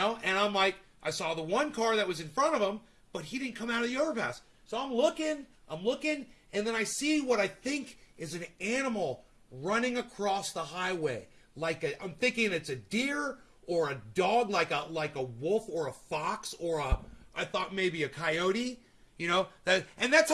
And I'm like, I saw the one car that was in front of him, but he didn't come out of the overpass. So I'm looking, and then I see what I think is an animal running across the highway. I'm thinking it's a deer or a dog, like a wolf or a fox or I thought maybe a coyote, you know? And that's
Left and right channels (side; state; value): both; identical; correlation 1.00